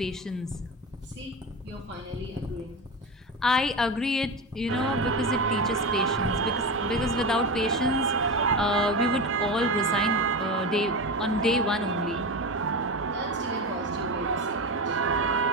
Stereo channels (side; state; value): both; normal; correlation 0.23